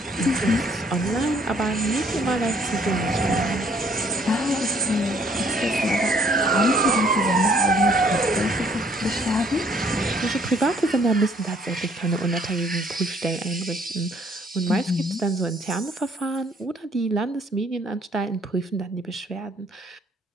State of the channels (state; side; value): normal; both; correlation 0.63